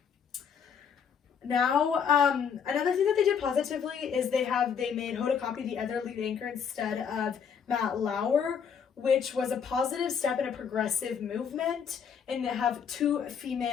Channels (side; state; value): right; quieter; 7.1 dB